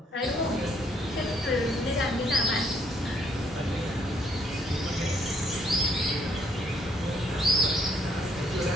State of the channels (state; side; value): normal; both; correlation 0.68